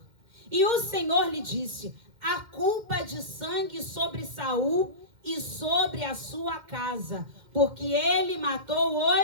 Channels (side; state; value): left; late; 2.1 ms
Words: E o Senhor lhe disse, a culpa de sangue sobre Saul e sobre a sua casa, porque ele matou